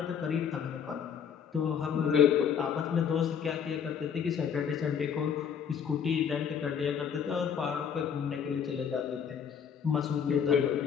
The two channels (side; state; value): right; quieter; 7.6 dB